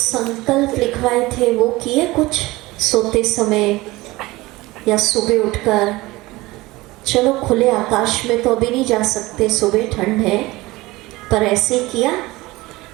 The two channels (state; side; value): quieter; left; 20.3 dB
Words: लिखवाए थे वो किए कुछ सोते समय या सुबह उठकर। चलो खुले आकाश में तो अभी नहीं जा सकते, सुबह ठंड है, पर ऐसे किया।